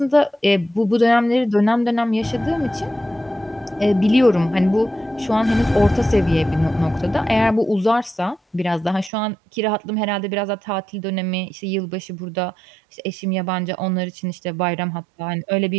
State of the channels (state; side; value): drops out; left; at 9.1 s